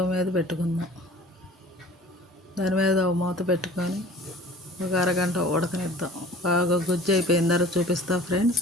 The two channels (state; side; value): normal; both; correlation 0.46